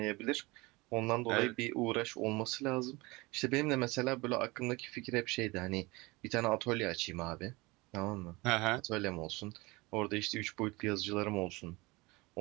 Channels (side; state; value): left; quieter; 23.5 dB